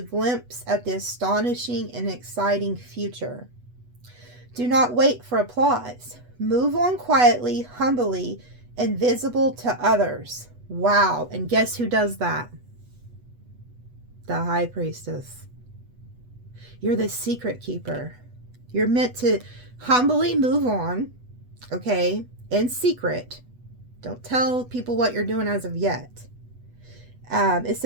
at the astonishing and exciting future. Do not wait for applause. Move on quietly, humbly, and visible to others. Wow. And guess who does that? The high priestess. You're the secret keeper. You're meant to humbly move on, okay, in secret. Don't tell people what you're doing as of yet. It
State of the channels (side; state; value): left; late; 8.1 ms